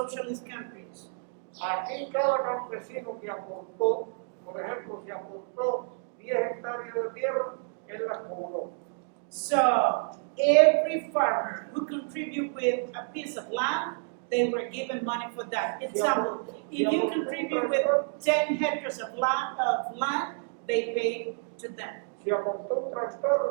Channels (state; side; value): silent; left; digital silence